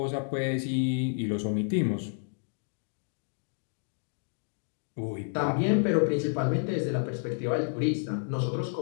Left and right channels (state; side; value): silent; right; digital silence